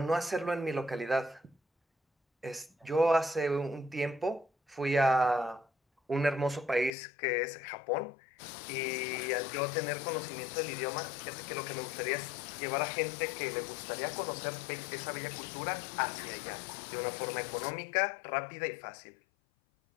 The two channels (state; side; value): drops out; right; at 6.9 s